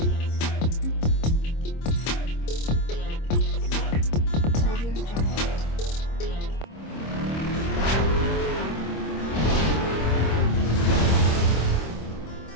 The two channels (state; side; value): late; right; 26 ms